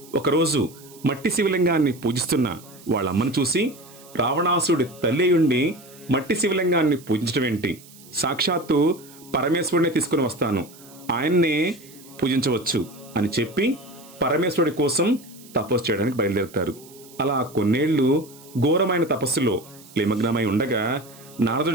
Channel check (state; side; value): noise; right; hiss, 22 dB below the sound